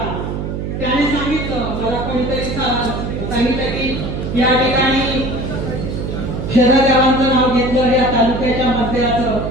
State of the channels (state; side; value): noise; right; hum, 4 dB below the sound